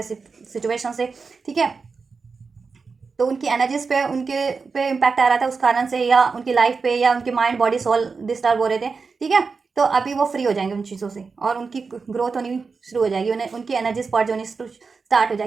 सिचुएशन से, ठीक है। तो उनकी एनर्जीज पे उनके पे इम्पैक्ट आ रहा था उस कारण से, या उनकी लाइफ पे, या उनकी माइंड बॉडी सोल डिस्टर्ब हो रहे थे, ठीक है। तो अभी वो फ्री हो जाएंगे उन चीज़ों से, और उनकी ग्रोथ होनी शुरू हो जाएगी, उन्हें उनकी एनर्जीज पर्ज होनी स्टार्ट हो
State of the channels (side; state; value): left; quieter; 4.8 dB